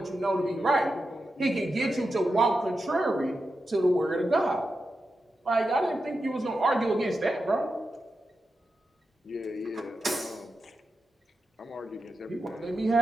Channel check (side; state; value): both; normal; correlation 0.89